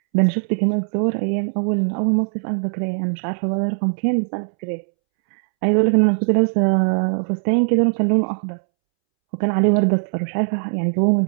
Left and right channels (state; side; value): silent; left; 66 dB below the other